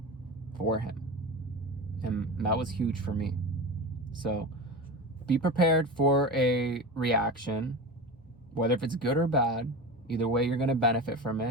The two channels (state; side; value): normal; both; correlation 0.27